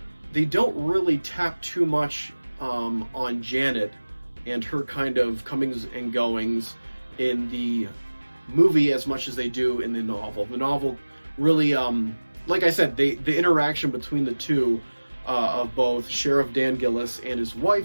don't really tap too much on Janet and her kind of comings and goings in the movie as much as they do in the novel. The novel really, like I said, the interaction between the two, of both Sheriff Dan Gillis and his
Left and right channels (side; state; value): both; inverted; correlation -1.00